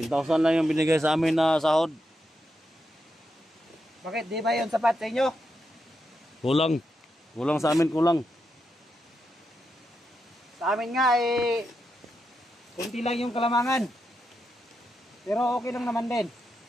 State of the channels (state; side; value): normal; both; correlation 0.85